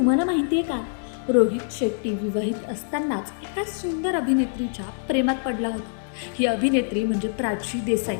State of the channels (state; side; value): silent; right; 60 dB below the other